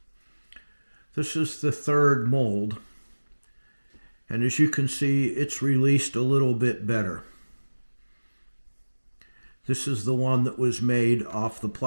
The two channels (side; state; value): both; inverted; correlation -1.00